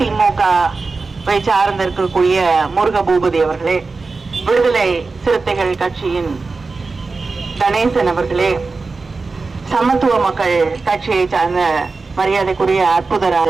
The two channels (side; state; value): left; quieter; 4.0 dB